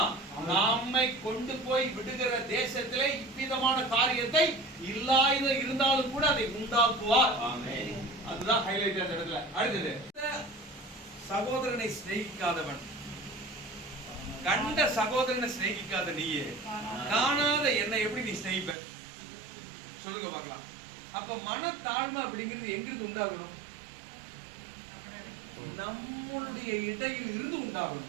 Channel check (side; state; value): left; drops out; at 18.8 s